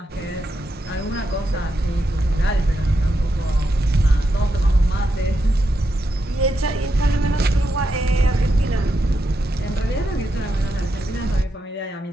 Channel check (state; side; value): normal; both; correlation 0.84